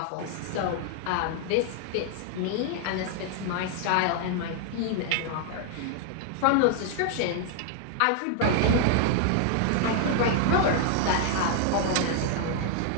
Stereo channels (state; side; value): different; both; correlation -0.01